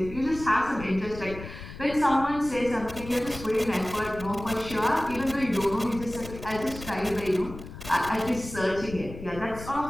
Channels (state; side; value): noise; left; rumble, 13 dB below the sound